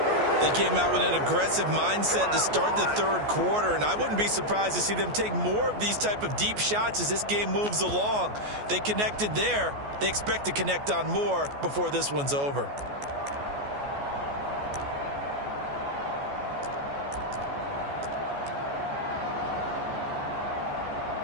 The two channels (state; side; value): late; left; 14 ms